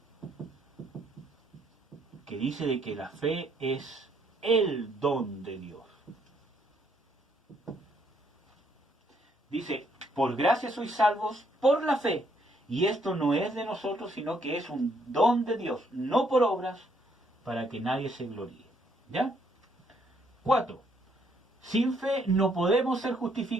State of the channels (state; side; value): normal; both; correlation 0.70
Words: Que dice de que la fe es el don de Dios. Dice, por gracia sois salvos por la fe. Y esto no es de nosotros, sino que es un don de Dios, no por obras, para que nadie se gloríe. ¿Ya? 4. Sin fe no podemos ser